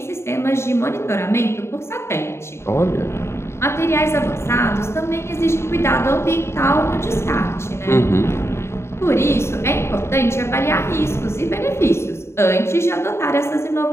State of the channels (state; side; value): late; right; 0.13 ms